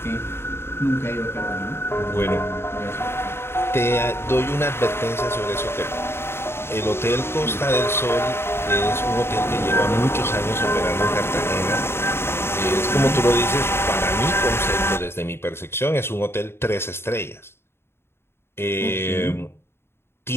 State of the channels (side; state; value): right; late; 0.12 ms